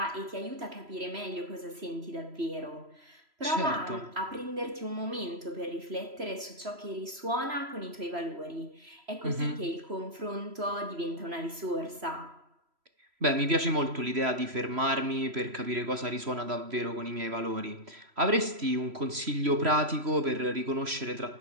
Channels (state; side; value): late; left; 3.0 ms